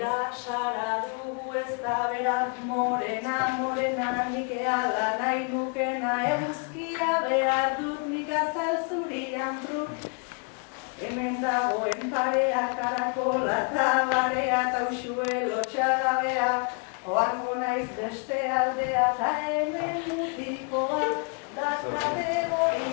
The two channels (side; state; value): right; quieter; 35.6 dB